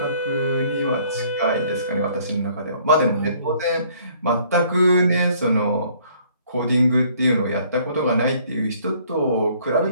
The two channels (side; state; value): both; inverted; correlation -0.60